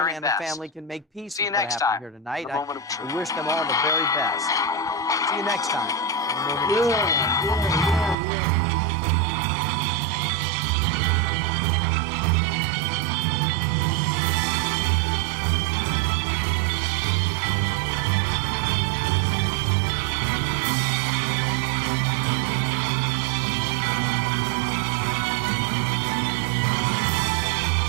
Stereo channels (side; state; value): left; drops out; at 8.2 s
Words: and best. the family can make peace See you with what next happened time. here tonight. The moment of truth. I wish them all the very best. See you next time. on The Moment of Truth.